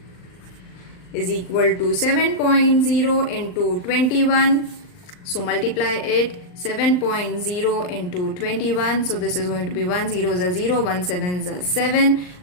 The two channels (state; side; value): late; right; 39 ms